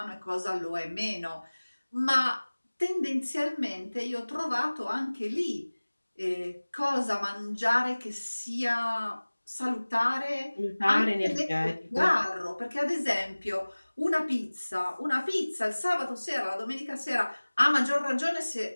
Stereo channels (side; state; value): both; inverted; correlation -1.00